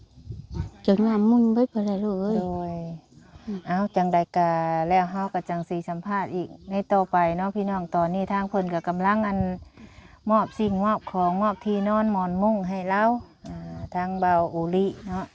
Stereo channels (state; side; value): identical; both; correlation 1.00